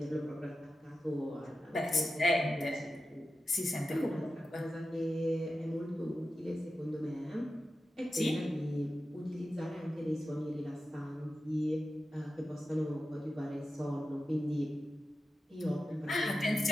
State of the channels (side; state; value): both; normal; correlation 0.91